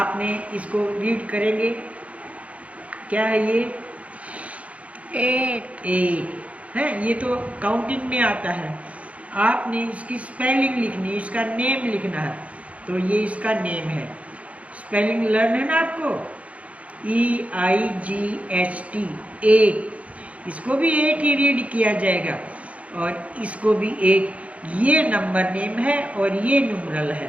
इसको रीड करेंगे, क्या है ये? 8 है, ये तो काउंटिंग में आता है। आपने इसकी स्पेलिंग लिखनी है, इसका नेम लिखना है, तो ये इसका नेम है। स्पेलिंग लर्न है ना आपको, EIGHT 8, इसको भी 8 ही रीड किया जाएगा, और इसको भी 8। ये नंबर नेम है और ये न्यूमरल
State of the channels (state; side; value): late; left; 0.065 ms